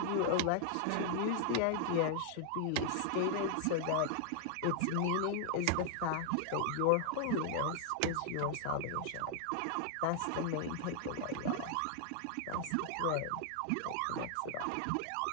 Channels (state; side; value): different; both; correlation 0.00